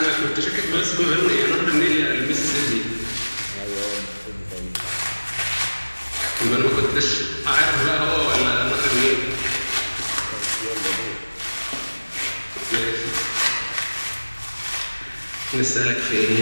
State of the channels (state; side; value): inverted; both; correlation -1.00